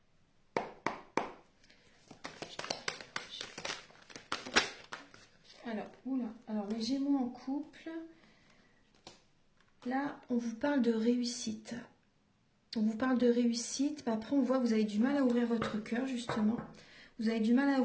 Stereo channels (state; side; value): identical; both; correlation 1.00